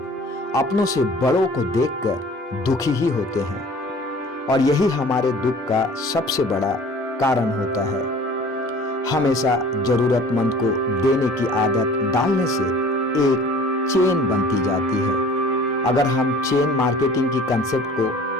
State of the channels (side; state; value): both; normal; correlation 0.47